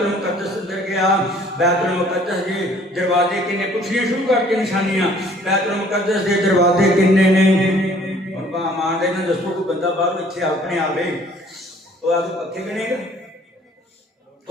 اندر گیا بیت المقدس دے دروازے کنے پوچھنے شروع کر کے نشانیاں بیت المقدس دے دروازے کنے نے ان کا امان دے نا دستوں کو بندہ باہر اتھے اپنے آوے وہ آگے پکھے گنے گا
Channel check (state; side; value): normal; both; correlation 0.56